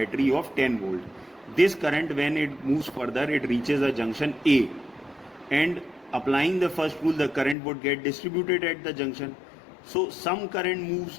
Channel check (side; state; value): right; drops out; at 7.6 s